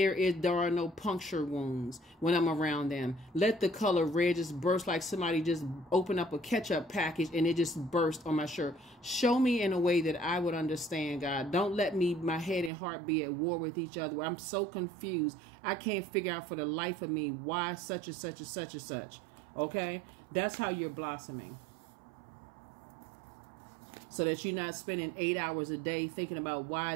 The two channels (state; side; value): drops out; left; at 12.7 s